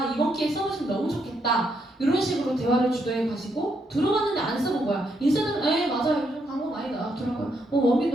이번 기회에 써보시면 너무 좋겠다. 이런 식으로 대화를 주도해 가시고 들어봤는데 안 써본 거야. 인셀덤 맞아요. 요즘 광고 많이 나왔더라고요.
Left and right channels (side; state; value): both; normal; correlation 0.77